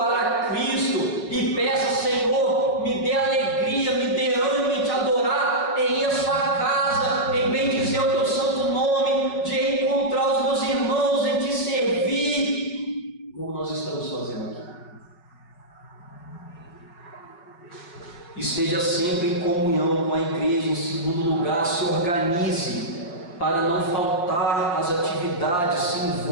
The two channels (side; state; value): right; late; 5.6 ms